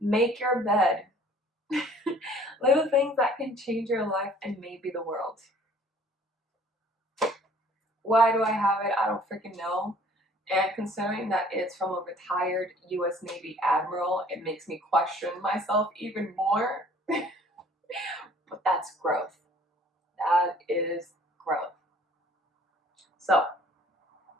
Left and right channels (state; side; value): normal; both; correlation 0.54